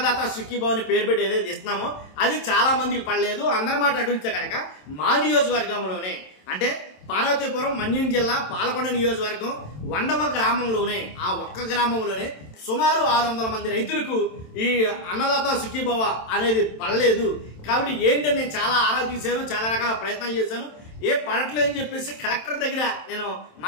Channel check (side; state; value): right; late; 27 ms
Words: సుఖీభావని పేరు పెట్టి ఏదైతే ఇస్తున్నామో అది చాలా మందికి పడలేదు. అందరి మాట అడిగితే కనుక మా నియోజకవర్గంలోనే అంటే పార్వతీపురం, మన్యం జిల్లా, పాలకొండ నియోజకవర్గం వండవ గ్రామంలోనే, ఆ ఒక్క గ్రామంలోనే సుమారు 600 మంది రైతులకు ఈ అన్నదాత సుఖీభవ అనేది పడలేదు. కాబట్టి ఏంటని నేను చాలా ఆరా తీశాను, చాలా రకాల ప్రయత్నాలు చేశాను. పడట్లేదు అని చెప్పేసి కలెక్టర్ దగ్గర నేను